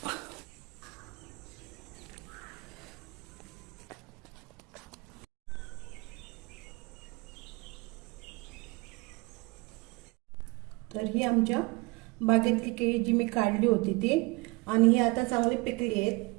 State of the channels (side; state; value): left; quieter; 25.8 dB